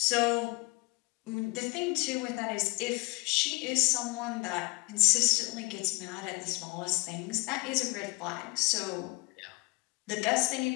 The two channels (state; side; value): quieter; right; 26.9 dB